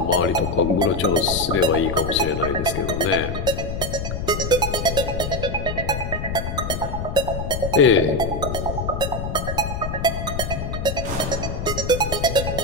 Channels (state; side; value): noise; left; rumble, 4 dB below the sound